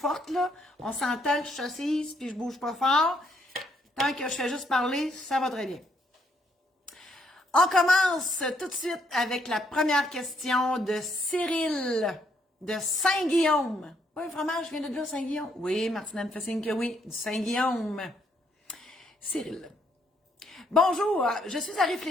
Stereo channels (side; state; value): both; normal; correlation 0.72